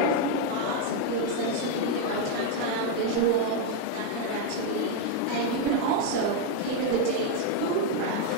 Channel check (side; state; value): both; different; correlation 0.01